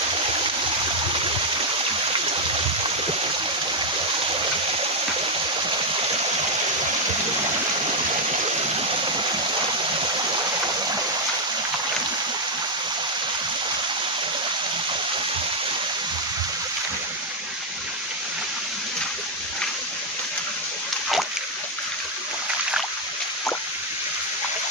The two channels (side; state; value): both; normal; correlation 0.01